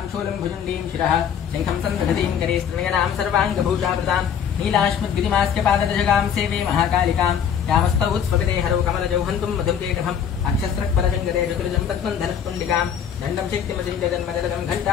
शूलं भुजण्डीं शिरः शङ्खं सन्दधतीं करे स्त्रिणयनां सर्वाङ्गभूषावृतां नीलाश्मद्गिरिमास्य पाददशगां सेवे महाकालिकां यामस्तौ उत्स्वपिते हरौ कमलजौ हन्तुं मधुर्केटभम् अक्षस्रक्परशङ्करे चतुर्जं पद्मं धनुष्पुण्डिकां दण्डं शक्तिमतिं जगन्मजलदं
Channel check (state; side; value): quieter; right; 8.2 dB